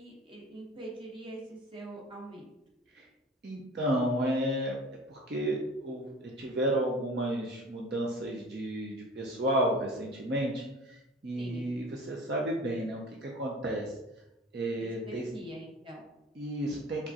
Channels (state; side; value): normal; both; correlation 0.42